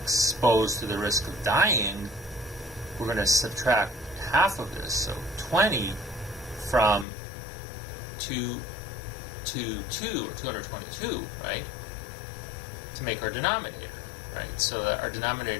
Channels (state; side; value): drops out; right; at 7.1 s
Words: to the risk of dying, we're going to subtract half of this, so 20 from 2 to 2, or 222, right, to make our denominator, right? So that our